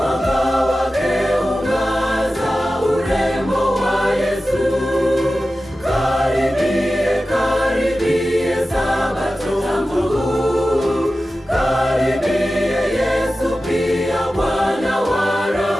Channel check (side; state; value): both; normal; correlation 0.94